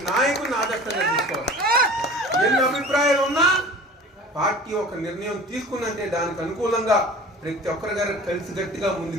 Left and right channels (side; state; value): both; normal; correlation 0.41